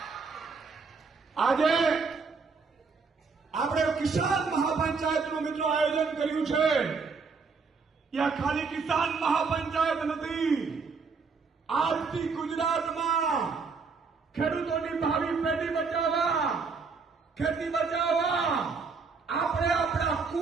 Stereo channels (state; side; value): quieter; left; 4.9 dB